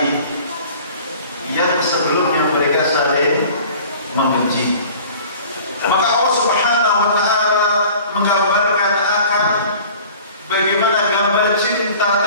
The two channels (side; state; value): both; inverted; correlation -0.46